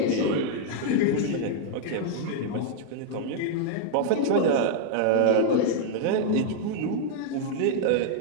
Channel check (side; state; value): both; different; correlation -0.01